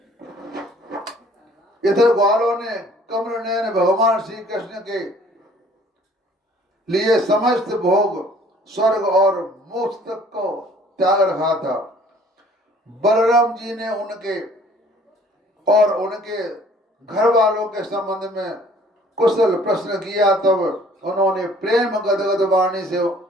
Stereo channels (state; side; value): normal; both; correlation 0.55